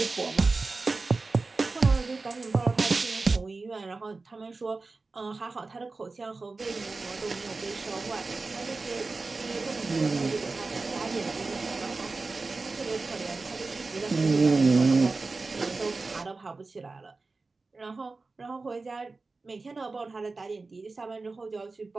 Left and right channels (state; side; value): quieter; left; 3.8 dB